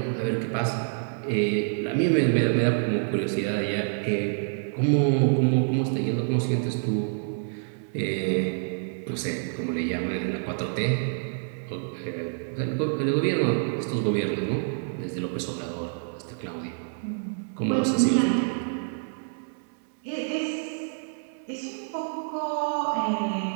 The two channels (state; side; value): silent; left; 60 dB below the other